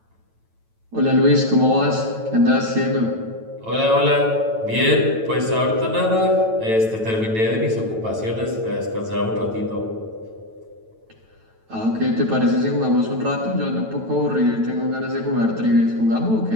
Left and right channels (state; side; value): late; left; 9.1 ms